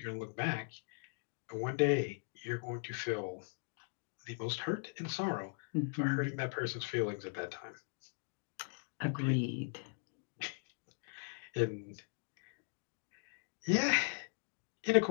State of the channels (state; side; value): silent; right; digital silence